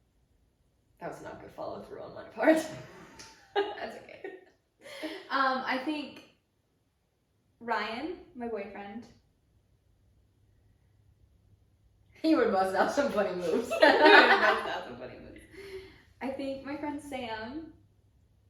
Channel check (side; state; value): both; identical; correlation 1.00